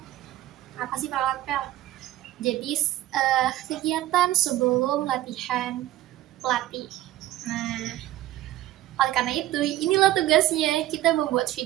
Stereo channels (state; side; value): quieter; left; 14.5 dB